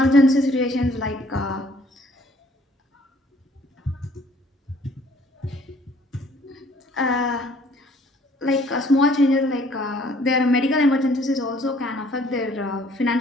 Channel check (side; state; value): both; normal; correlation 0.59